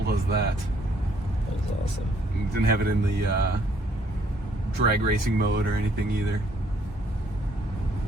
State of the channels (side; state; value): both; normal; correlation 0.66